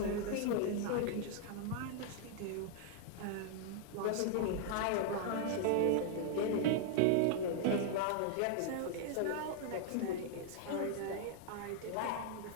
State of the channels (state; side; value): different; both; correlation -0.01